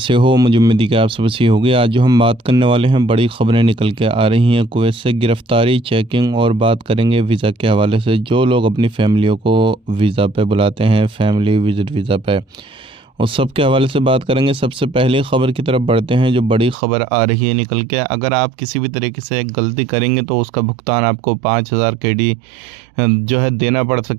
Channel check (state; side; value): drops out; left; at 16.8 s